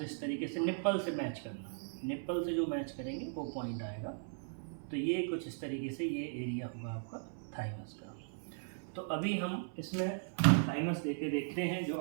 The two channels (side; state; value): left; silent; 53 dB below the other